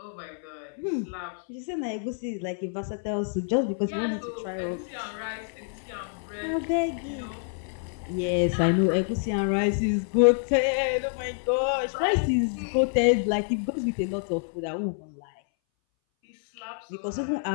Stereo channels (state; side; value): silent; right; 60 dB below the other